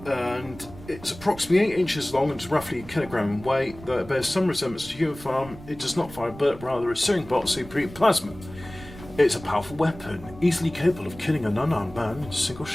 And it's approximately 8 inches long and is roughly a kilogram in weight. Though it bears some resemblance to a human firearm, it does not fire a bullet, rather a searing bolt of superheated plasma. It's a powerful weapon, easily capable of killing an unarmed man in a single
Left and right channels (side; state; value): right; noise; rumble, 17 dB below the sound